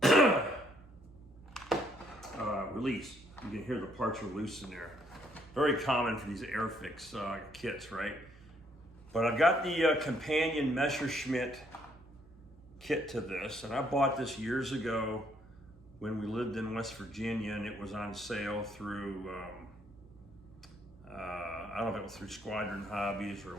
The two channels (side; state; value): both; normal; correlation 0.69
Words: Release. You can hear the parts are loose in there. Very common for these Airfix kits, right? But I've got the companion Messerschmitt kit to this, and I bought this years ago when we lived in West Virginia, and it was on sale through, I don't know if it was through Squadron Hobbies or